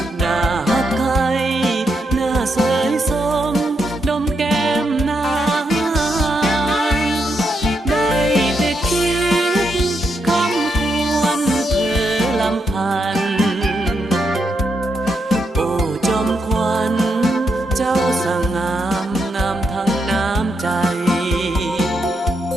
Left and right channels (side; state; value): both; normal; correlation 0.81